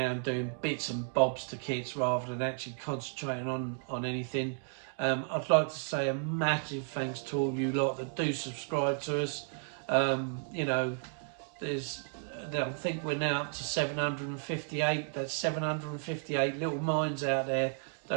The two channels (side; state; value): left; silent; 56 dB below the other